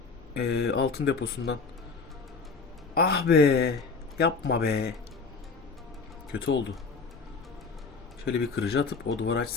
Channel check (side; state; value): right; quieter; 4.7 dB